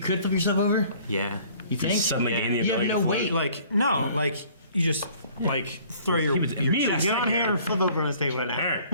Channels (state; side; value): inverted; both; correlation -0.54